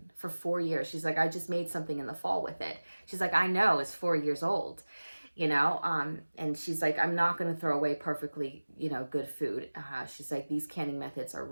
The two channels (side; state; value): both; inverted; correlation -1.00